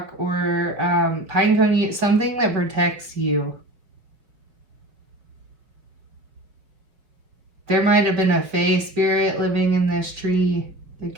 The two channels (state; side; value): late; left; 5.5 ms